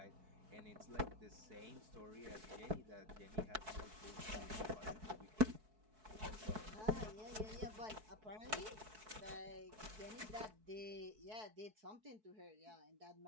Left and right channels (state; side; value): late; left; 4.6 ms